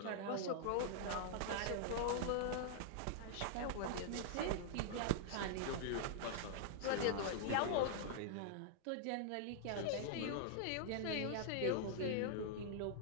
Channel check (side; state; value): both; different; correlation -0.01